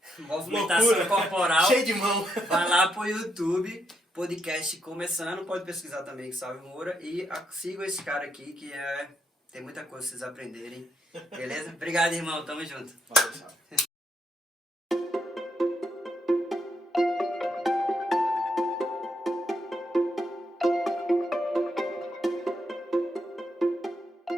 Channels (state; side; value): normal; both; correlation 0.78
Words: movimentação Loucura. corporal, Cheio de mão. vai lá pro YouTube, podcast começando, pode pesquisar também Salve Moura e sigam esse cara aqui que tem muita coisa pra vocês aprenderem. Beleza? Obrigado, irmão. Tamo junto. Valeu, salve.